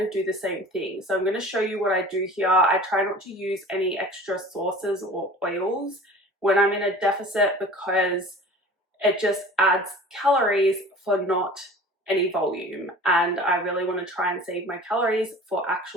of do the same thing. So I'm going to show you what I do here. I try not to use any extra sauces or oils when I'm in a deficit because it just adds calories for not any volume. And I really want to try and save my calories for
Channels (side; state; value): both; normal; correlation 0.42